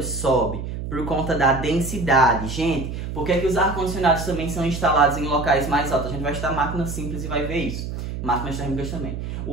sobe, por conta da densidade. Gente, por que os ar-condicionados também são instalados em locais mais altos? A gente vai estudar máquinas simples e vai ver isso. Máquinas térmicas também.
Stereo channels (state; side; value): noise; right; hum, 6 dB below the sound